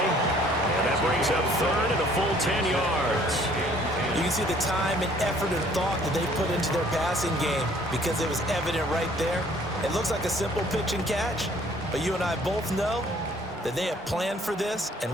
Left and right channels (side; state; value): both; normal; correlation 0.58